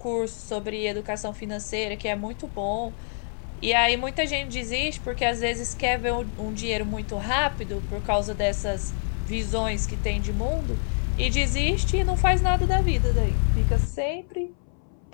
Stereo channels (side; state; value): right; silent; 61 dB below the other